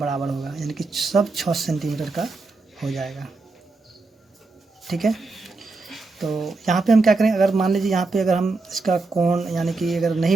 होगा, यानी कि सब 6 सेंटीमीटर का हो जाएगा। ठीक है, तो यहाँ पे हम क्या करें, अगर मान लीजिए यहाँ पे अगर हम इसका कोण यानी कि अगर नहीं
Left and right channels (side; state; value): left; quieter; 3.7 dB